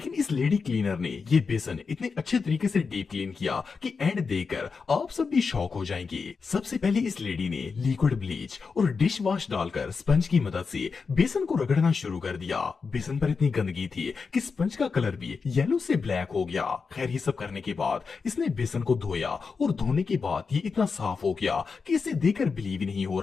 इस लेडी क्लीनर ने ये बेसन इतने अच्छे तरीके से डीप क्लीन किया कि एंड देखकर आप सब भी शॉक हो जाएंगे। सबसे पहले इस लेडी ने लिक्विड ब्लीच और डिश वॉश डालकर स्पंज की मदद से बेसन को रगड़ना शुरू कर दिया। बेसन पर इतनी गंदगी थी कि स्पंज का कलर भी येलो से ब्लैक हो गया। खैर ये सब करने के बाद इसने बेसन को धोया और धोने के बाद ये इतना साफ हो गया कि इसे देखकर बिलीव ही नहीं हो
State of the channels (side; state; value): right; quieter; 5.0 dB